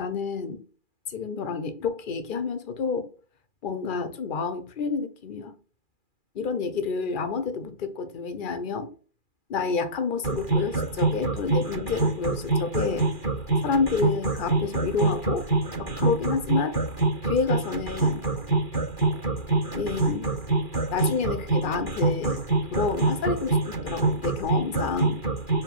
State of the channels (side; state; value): right; late; 2.4 ms